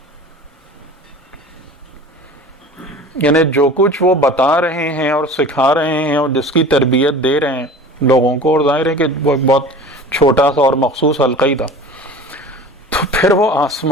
یعنی جو کچھ وہ بتا رہے ہیں اور سکھا رہے ہیں اور جس کی تربیت دے رہے ہیں لوگوں کو, اور ظاہر ہے کہ وہ ایک بہت چھوٹا سا اور مخصوص حلقہ ہی تھا, تو پھر وہ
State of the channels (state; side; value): normal; both; correlation 0.39